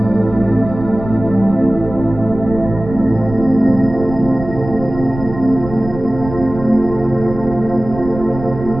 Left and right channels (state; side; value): noise; right; rumble, 11 dB below the sound